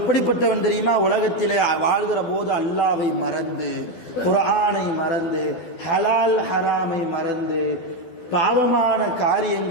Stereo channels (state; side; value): late; right; 12 ms